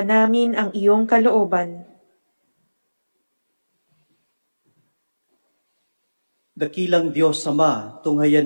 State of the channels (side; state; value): both; inverted; correlation -1.00